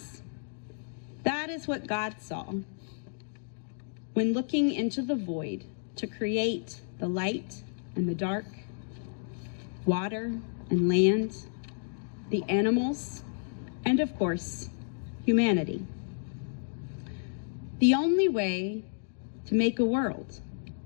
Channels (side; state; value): right; silent; digital silence